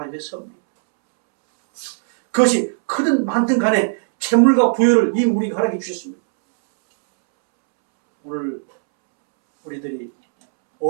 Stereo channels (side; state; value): left; silent; 67 dB below the other